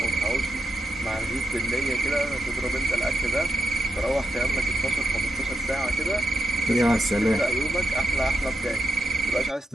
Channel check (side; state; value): both; normal; correlation 0.82